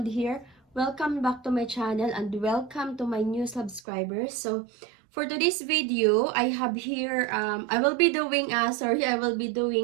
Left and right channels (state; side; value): drops out; left; at 3.8 s